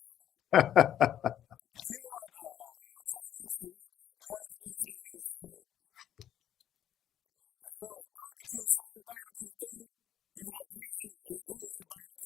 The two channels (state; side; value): quieter; right; 10.8 dB